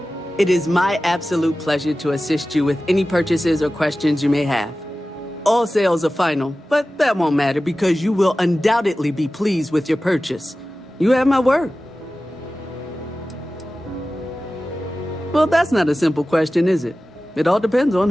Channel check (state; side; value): normal; both; correlation 0.95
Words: It is my absolute pleasure to assist you with any purchases or questions you may have. All sales are final, but that won't matter because you will undoubtedly be pleased with your purchase. You have my word. Well, that's not a simple question, is it? It all depends on